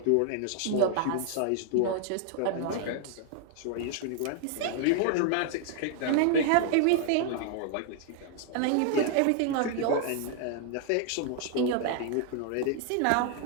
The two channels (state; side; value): different; both; correlation 0.00